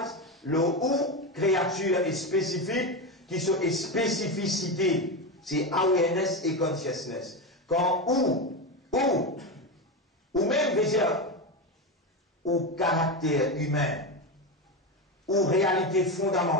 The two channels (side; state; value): both; normal; correlation 0.16